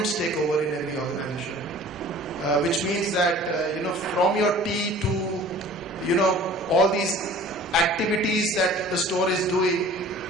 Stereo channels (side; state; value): both; normal; correlation 0.46